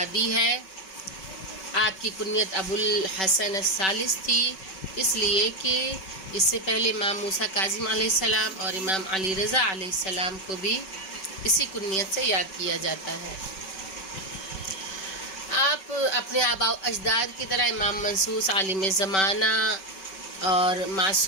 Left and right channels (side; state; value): right; late; 5.3 ms